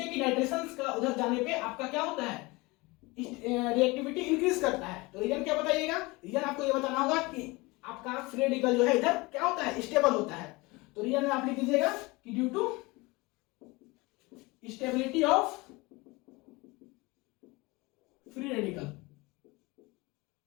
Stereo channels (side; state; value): right; quieter; 23.7 dB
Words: कि नाइट्रेशंस का उधर जाने पे आपका क्या होता है, रिएक्टिविटी इंक्रीज करता है, तो रीजन क्या बताइएगा। रीजन आपको ये बताना होगा कि आपका फ्री रेडिकल जो है इधर क्या होता है, स्टेबल होता है। तो रीजन में आप लिख दीजिएगा कि due to stability of free radical,